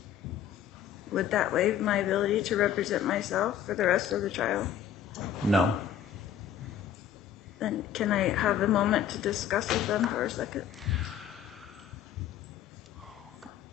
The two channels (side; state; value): right; quieter; 9.4 dB